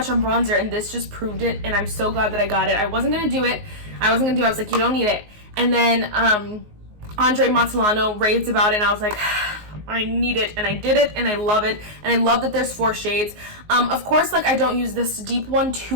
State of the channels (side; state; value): left; late; 19 ms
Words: on bronzer, and this just proved it, and I'm so glad that I got it. I wasn't going to do it. I was like, you don't need it. And then Andre Montellano raved about it, and I was like, I need it, and I did it, and I love it, and I love that there's 4 shades. Of course, like, I don't use this deep one